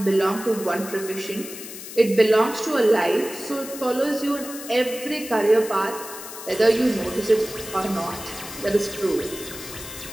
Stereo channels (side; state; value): left; noise; hiss, 12 dB below the sound